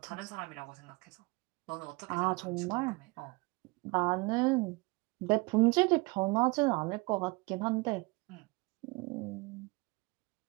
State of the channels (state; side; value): quieter; left; 26.0 dB